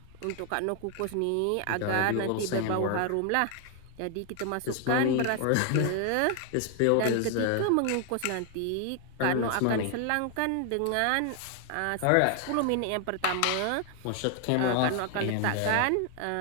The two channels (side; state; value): both; different; correlation 0.00